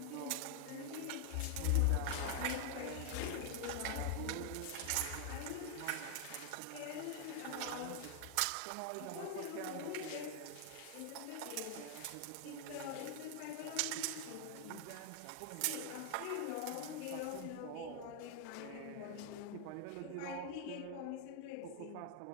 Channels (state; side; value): different; both; correlation 0.00